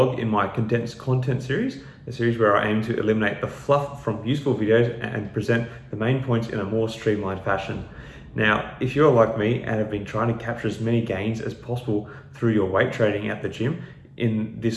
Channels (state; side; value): identical; both; correlation 1.00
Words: in my Condensed Content series, a series where I aim to eliminate the fluff from useful videos and present the main points in a more streamlined fashion. Now, if you're like me and have been trying to capture as many gains as possible through your weight training at the gym in